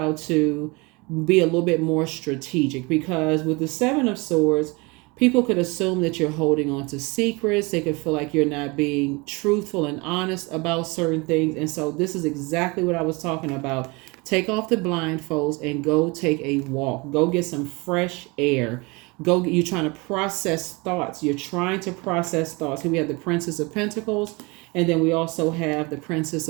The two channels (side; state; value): left; quieter; 26.6 dB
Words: to be a little bit more strategic, because with the 7 of Swords, people could assume that you're holding on to secrets. They could feel like you're not being truthful and honest about certain things. And so this is exactly what I was talking about. Take off the blindfolds and go take a walk. Go get some fresh air. You're trying to process thoughts. Here we have the Princess of Pentacles, and then we also have the Princess